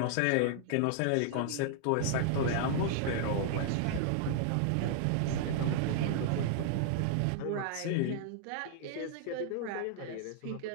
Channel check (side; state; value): both; different; correlation -0.01